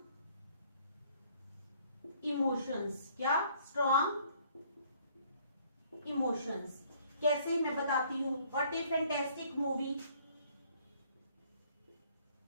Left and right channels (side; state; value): both; inverted; correlation -0.60